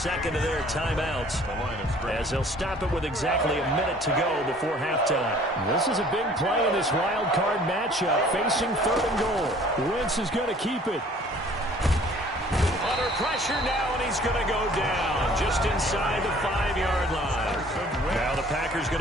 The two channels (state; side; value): normal; both; correlation 0.53